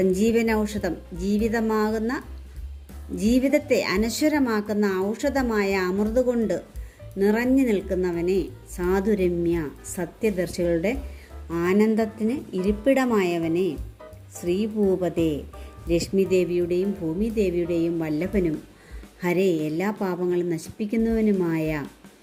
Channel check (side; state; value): both; identical; correlation 1.00